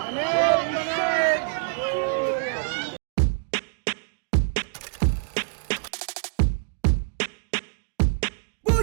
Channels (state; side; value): silent; left; digital silence